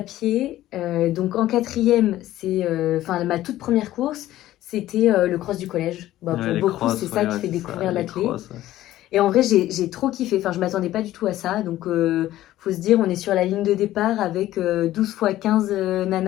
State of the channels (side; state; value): right; quieter; 14.5 dB